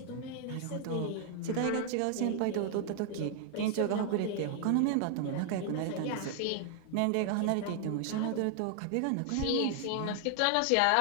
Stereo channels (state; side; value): different; both; correlation 0.00